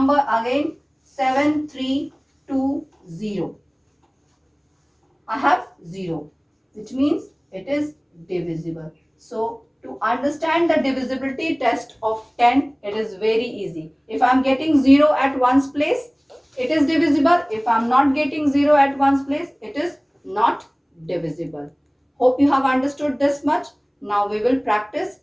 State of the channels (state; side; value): identical; both; correlation 1.00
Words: again 7, 3, 2, 0. I have 0, which means it is divisible. So to understand the divisibility test of 10, it is very easy. If I am getting 0 at one's place, it is divisible. If I am not getting 0 at one's place, it is not divisible. Hope you have understood this much. Now we will practice